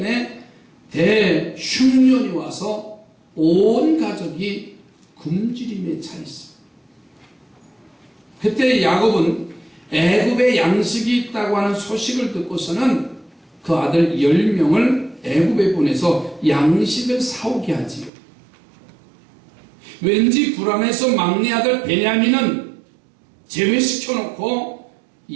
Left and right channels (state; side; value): drops out; left; at 18.1 s